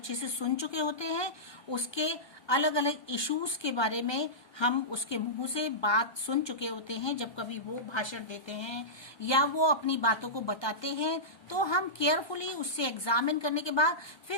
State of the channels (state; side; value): late; right; 1.2 ms